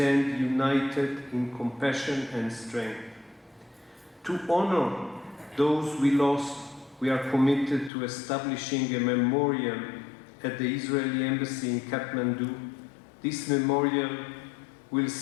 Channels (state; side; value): drops out; right; at 7.9 s